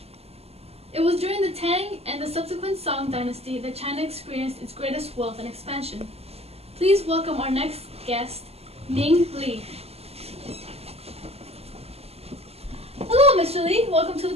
It was during the Tang and the subsequent Song dynasty that China experienced its greatest wealth and expansion. Please welcome our next guest, Ming Li. Hello, Mr. Li. Welcome to the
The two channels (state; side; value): late; left; 0.29 ms